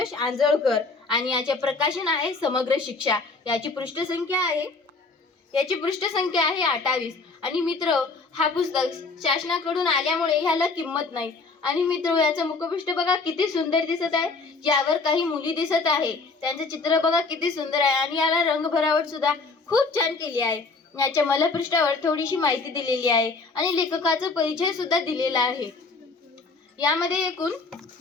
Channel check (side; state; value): right; quieter; 4.0 dB